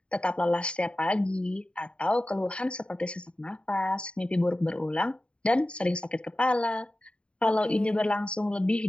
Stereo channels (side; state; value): right; late; 0.056 ms